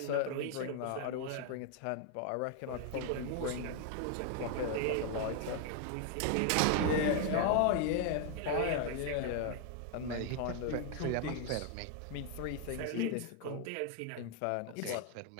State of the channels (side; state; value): both; different; correlation 0.00